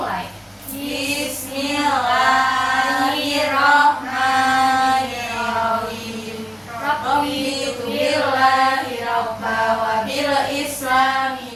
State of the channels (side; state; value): both; identical; correlation 1.00